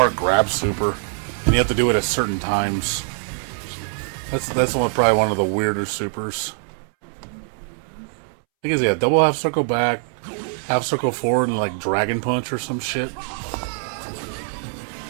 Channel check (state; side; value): silent; left; 64 dB below the other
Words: grab super, and you have to do it at certain times. That's probably one of the weirder supers. I think it's, yeah, double half circle back, half circle forward, and like dragon punch or some shit.